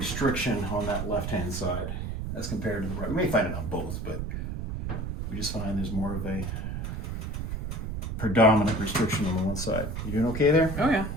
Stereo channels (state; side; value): noise; right; rumble, 4 dB below the sound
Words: on that left-hand side as compared to the right. We may find it on both, but we just find there's more of a predominant restriction on the one side. You doing okay there? Oh yeah.